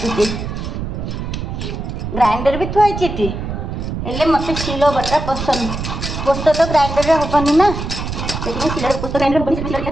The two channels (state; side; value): noise; right; rumble, 5 dB below the sound